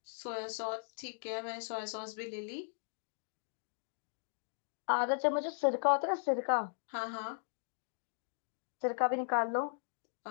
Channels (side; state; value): right; silent; digital silence